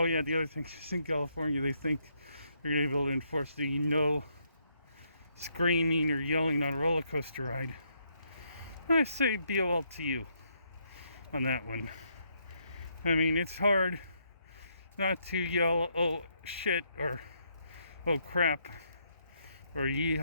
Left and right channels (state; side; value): inverted; both; correlation -0.75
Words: yeah, the other thing is in California they think they're going to be able to enforce the no screaming or yelling on a roller coaster ride. I say BOL to you on that one. I mean, it's hard not to yell, oh shit, or oh crap, or